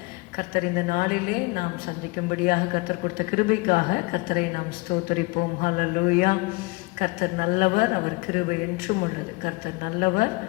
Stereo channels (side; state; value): right; quieter; 25.5 dB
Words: கர்த்தர் இந்த நாளிலே நாம் சந்திக்கும்படியாக கர்த்தர் கொடுத்த கிருபைக்காக கர்த்தரை நாம் ஸ்தோத்தரிப்போம். ஹல்லேலூயா. கர்த்தர் நல்லவர், அவர் கிருபை என்றும் உள்ளது. கர்த்தர் நல்லவர்,